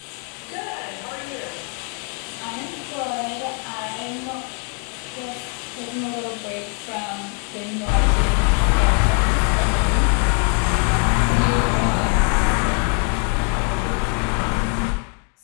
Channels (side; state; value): right; quieter; 36.9 dB